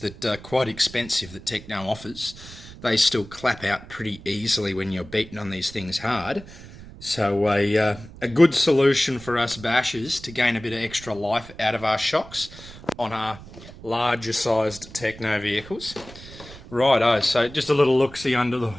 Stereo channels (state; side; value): noise; right; rumble, 17 dB below the sound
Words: are quite expensive that Tekno offers. They still clap out pretty easily when you're beating on these things hard. So a good solution for us bashers to gain a bit of extra life out of our shocks on our larger sized Tekno vehicles. Righto, so just a little look-see under the